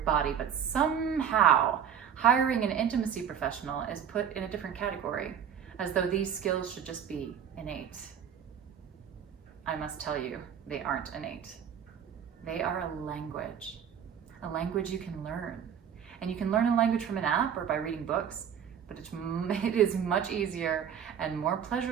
But somehow, hiring an intimacy professional is put in a different category, as though these skills should just be innate. I must tell you, they aren't innate. They are a language you can learn. And you can learn a language from an app or by reading books, but it is much easier and more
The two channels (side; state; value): left; quieter; 8.3 dB